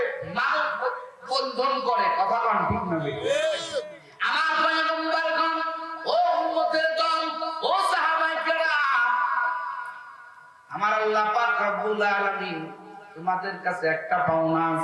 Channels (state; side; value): identical; both; correlation 1.00